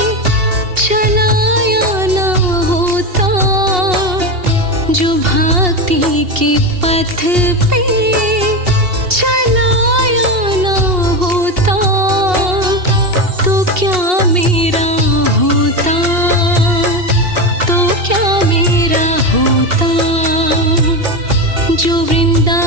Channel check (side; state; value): left; late; 2.8 ms